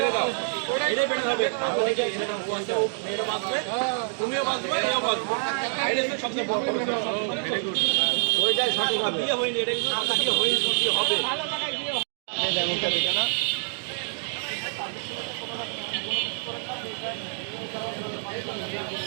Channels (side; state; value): left; silent; digital silence